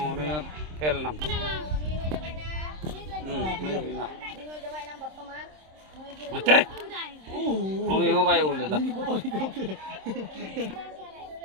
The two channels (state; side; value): late; left; 26 ms